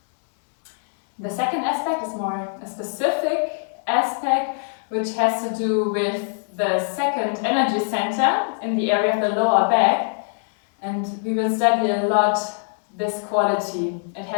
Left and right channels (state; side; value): silent; right; digital silence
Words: The second aspect is more a specific aspect, which has to do with the second energy center in the area of the lower back, and we will study a lot this quality. It